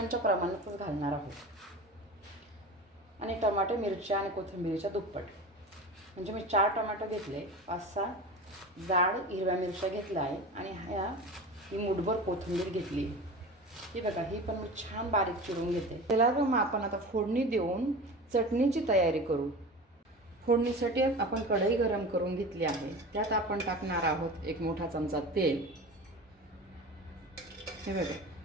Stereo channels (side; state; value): both; normal; correlation 0.33